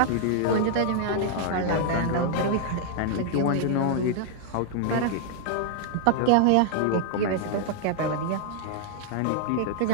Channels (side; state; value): both; different; correlation -0.01